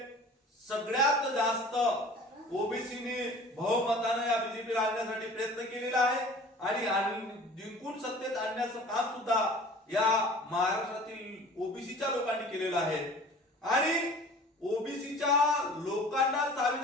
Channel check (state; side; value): normal; both; correlation 0.45